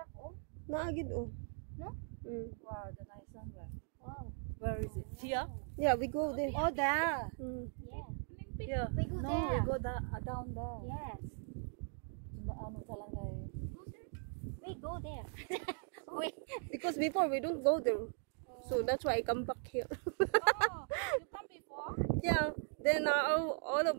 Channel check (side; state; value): left; silent; 52 dB below the other